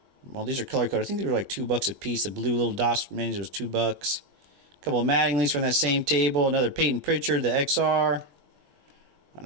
these are color coded. I think they were like $2 a piece. The blue little dots menus was $2. A couple of Mattingly's from that same table. Another Peyton Pritchard, the XR. An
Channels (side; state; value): left; late; 21 ms